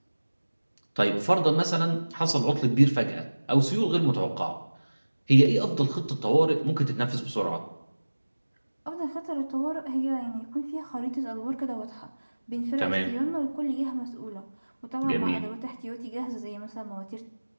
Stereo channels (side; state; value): both; inverted; correlation -1.00